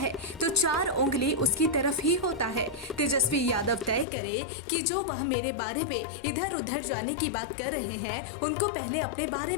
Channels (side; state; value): right; drops out; at 4.0 s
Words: तो 4 उंगली उसकी तरफ ही होता है। तेजस्वी यादव तय करे कि जो वह मेरे बारे में इधर उधर जाने की बात कर रहे हैं उनको पहले अपने बारे